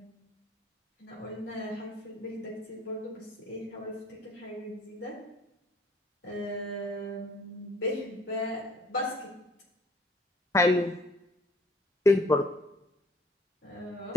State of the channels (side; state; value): both; normal; correlation 0.60